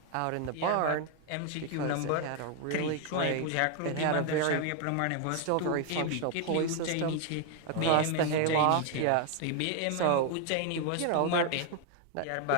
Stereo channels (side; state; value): both; different; correlation 0.01